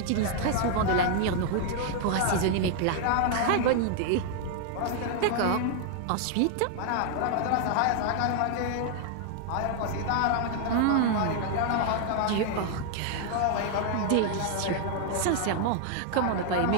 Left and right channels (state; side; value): different; both; correlation 0.00